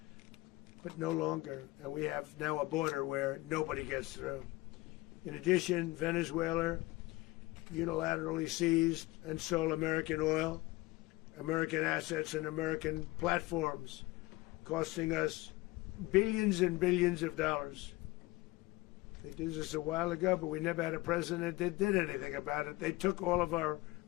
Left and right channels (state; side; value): quieter; right; 20.9 dB